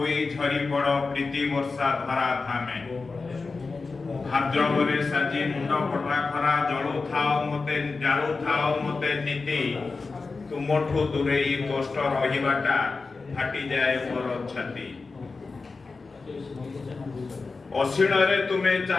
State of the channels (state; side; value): quieter; right; 4.1 dB